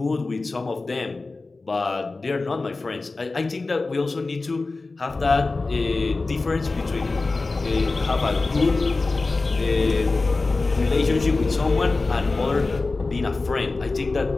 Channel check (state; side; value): quieter; right; 3.6 dB